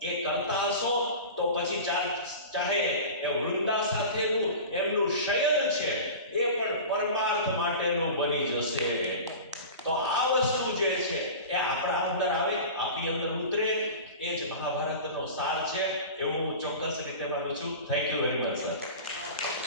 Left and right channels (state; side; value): inverted; both; correlation -0.33